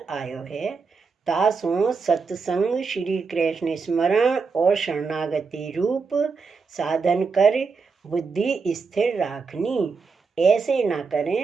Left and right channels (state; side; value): quieter; left; 4.8 dB